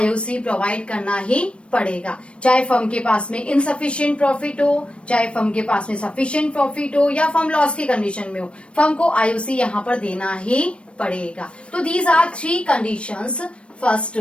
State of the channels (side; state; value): right; late; 0.059 ms